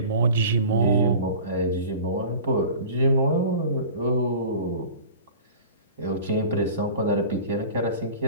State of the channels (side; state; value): both; inverted; correlation -0.39